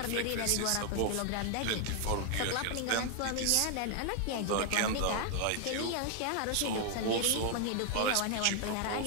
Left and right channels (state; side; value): different; both; correlation 0.00